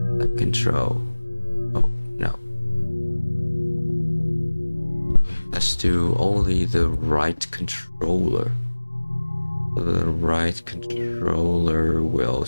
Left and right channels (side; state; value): both; inverted; correlation -1.00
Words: Control. Oh no. Let's do only the right controller. The right controller will